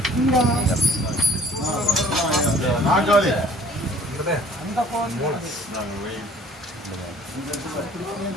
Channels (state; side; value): normal; both; correlation 0.53